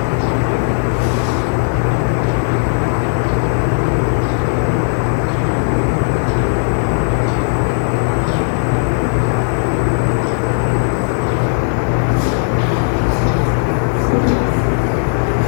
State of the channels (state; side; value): silent; right; digital silence